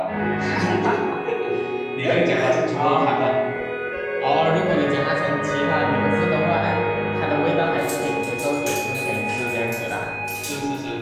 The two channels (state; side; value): identical; both; correlation 1.00